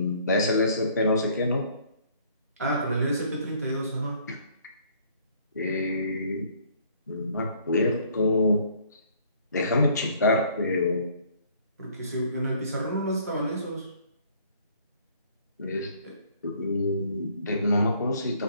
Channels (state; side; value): inverted; both; correlation -0.60